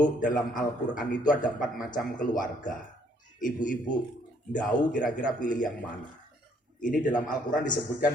dalam Al-Quran itu ada 4 macam keluarga. Ibu-ibu, tahu kira-kira pilih yang mana? Ini dalam Al-Quran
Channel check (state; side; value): normal; both; correlation 0.66